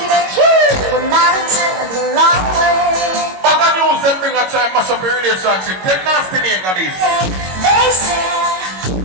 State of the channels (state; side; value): late; left; 22 ms